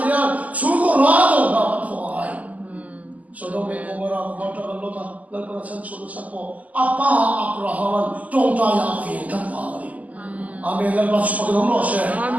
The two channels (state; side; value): late; left; 0.076 ms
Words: hiyan, suko rado na matuay. So dome komora kumata kalota, lalpanasan sulusan po, apa Abrahaman tongtaya fin kapawari. Amen. Lepas pagi nomor saya.